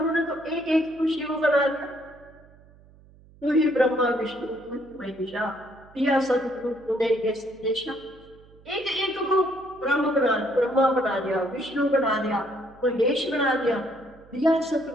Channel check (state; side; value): noise; right; hum, 25 dB below the sound